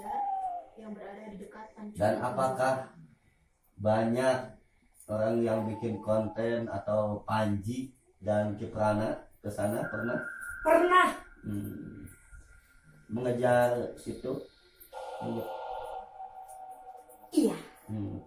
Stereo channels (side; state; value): both; identical; correlation 1.00